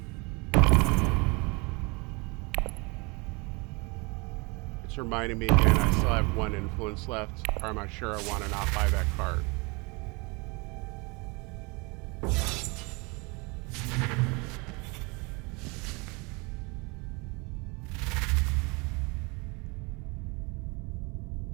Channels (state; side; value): quieter; left; 28.8 dB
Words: It's reminding me again, I still have 1 influence left, or am I sure I want to not buy that card?